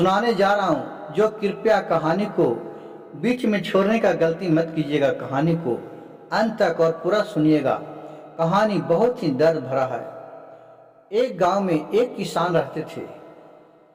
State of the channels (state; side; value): identical; both; correlation 1.00